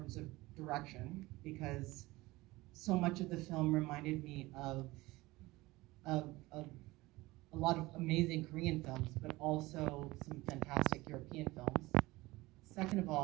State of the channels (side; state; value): left; quieter; 20.1 dB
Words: of direction, because so much of the film reminded me of a lot of amazing Korean films, but also some fantastic European films. Second of